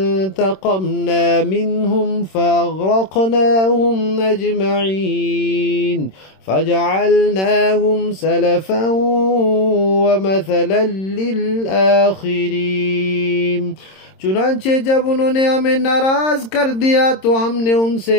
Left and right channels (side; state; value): right; late; 26 ms